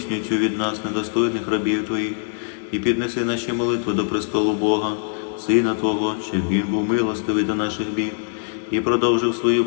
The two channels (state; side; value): silent; right; 62 dB below the other